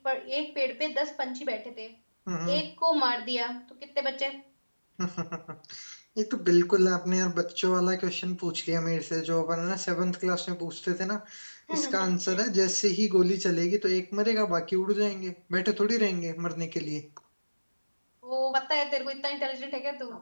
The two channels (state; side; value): inverted; both; correlation -1.00